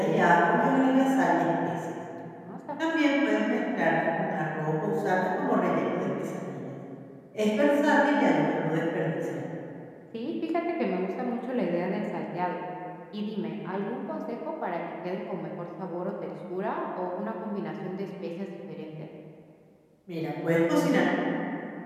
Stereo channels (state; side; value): identical; both; correlation 1.00